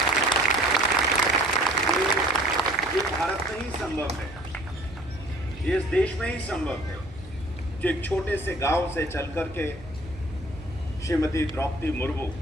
ये भारत में ही संभव है, ये इस देश में ही संभव है जो एक छोटे से गांव से चल करके श्रीमती द्रौपदी मुर्मू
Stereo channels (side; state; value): right; noise; hum, 19 dB below the sound